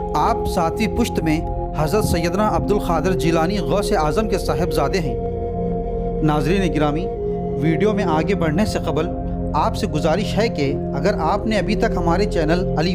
आप 7वीं पुश्त में हज़रत सैयदना अब्दुल क़ादिर जिलानी गौस आज़म के साहिबजादे हैं। नाज़रीन गिरामी, वीडियो में आगे बढ़ने से क़बल आपसे गुजारिश है कि अगर आपने अभी तक हमारे चैनल अली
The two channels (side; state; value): both; identical; correlation 1.00